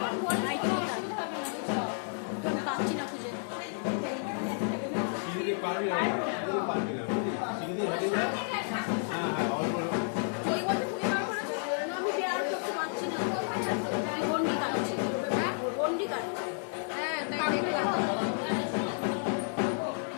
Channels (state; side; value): silent; right; 57 dB below the other